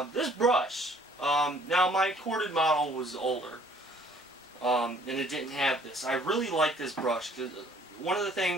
This brush, now my corded model was older, and it didn't have this. I really like this brush because one of the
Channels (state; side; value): normal; both; correlation 0.58